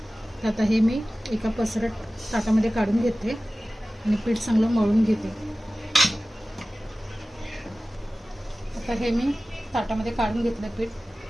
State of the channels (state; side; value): normal; both; correlation 0.97